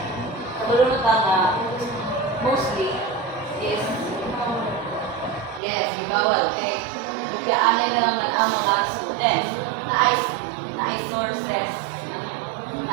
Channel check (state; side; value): drops out; left; at 5.6 s